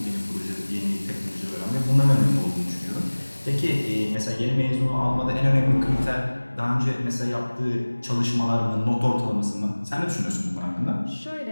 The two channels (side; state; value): both; inverted; correlation -1.00